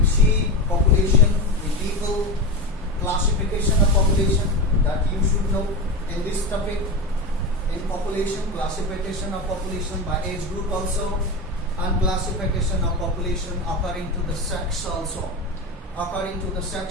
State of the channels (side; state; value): both; normal; correlation 0.20